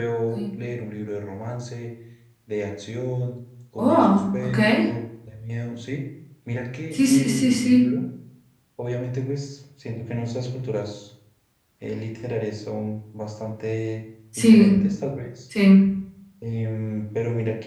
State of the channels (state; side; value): identical; both; correlation 1.00